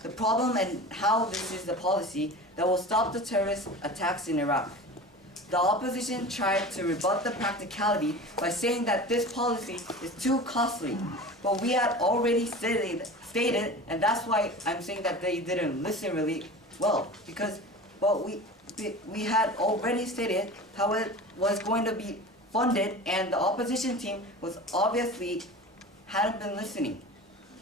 the problem and how this is the policy that will stop the terrorist attacks in Iraq. The opposition tried to rebut the practicality by saying that this policy is too costly, but we had already stated, and that's why I'm saying that they didn't listen really well, because we had already stated how it was going to be funded, and the opposition team was obviously hadn't been listening.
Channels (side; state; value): both; normal; correlation 0.35